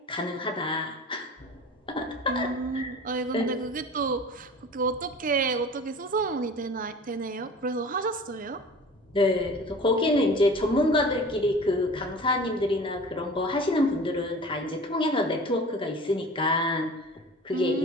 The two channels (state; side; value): normal; both; correlation 0.40